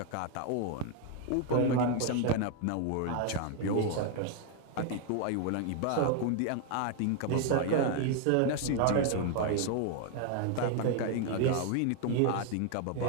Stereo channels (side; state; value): both; different; correlation 0.01